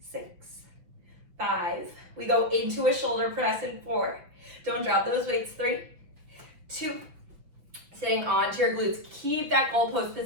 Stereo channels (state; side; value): late; left; 5.9 ms